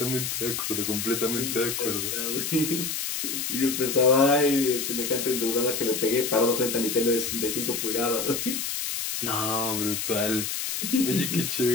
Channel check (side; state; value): left; noise; hiss, 3 dB below the sound